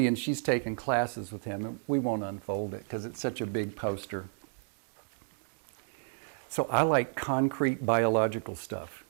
she's taken classes with him, and we won't unfold it because it's such a big poster. So I like concrete biological stuff.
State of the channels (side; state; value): left; silent; digital silence